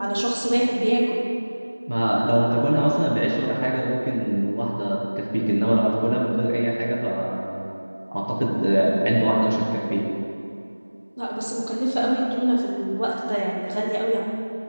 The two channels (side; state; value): both; inverted; correlation -1.00